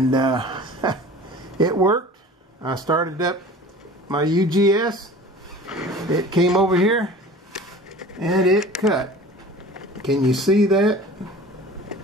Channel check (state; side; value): normal; both; correlation 0.41